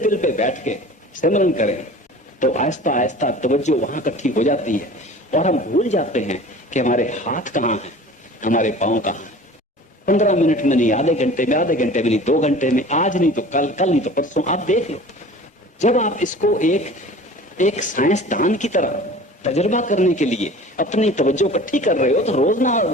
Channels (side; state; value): both; normal; correlation 0.42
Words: पे बैठ के सिमरन करें तो आहिस्ता आहिस्ता तवज्जो वहां इकट्ठी हो जाती है, और हम भूल जाते हैं कि हमारे हाथ कहाँ हैं, हमारे पांव कहाँ हैं। 15 मिनट में नहीं, आधे घंटे में, आधे घंटे में नहीं, 2 घंटे में, आज नहीं तो कल, कल नहीं तो परसों, आप देख लो। जब आप इसको एक साइंसदान की तरह तजुर्बा करने के लिए अपनी तवज्जो इकट्ठी कर रहे हो, तो रोज ना